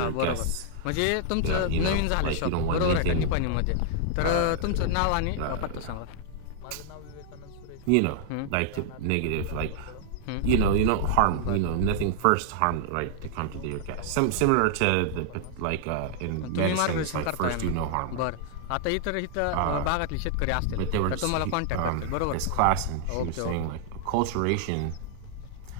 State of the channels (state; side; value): different; both; correlation -0.01